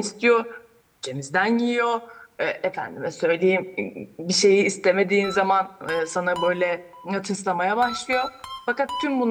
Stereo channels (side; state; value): both; identical; correlation 1.00